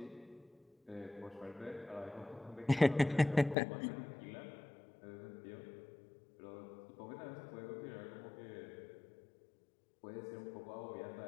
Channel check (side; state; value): right; drops out; at 3.6 s